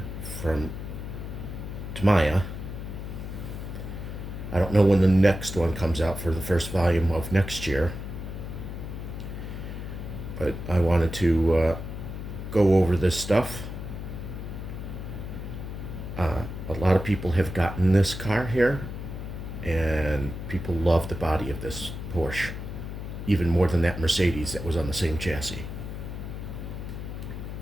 from Tamaya. I don't know when the next one comes out for the first volume of next year, but I wanted to go over this stuff. A lot of people have gotten this car here, and people love the body of this Porsche, even more than that Mercedes that was on the same chassis.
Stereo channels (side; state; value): left; noise; hum, 7 dB below the sound